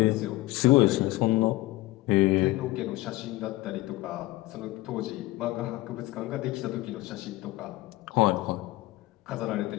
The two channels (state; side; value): quieter; right; 18.8 dB